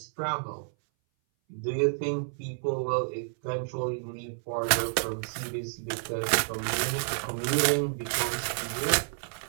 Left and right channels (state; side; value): silent; left; 58 dB below the other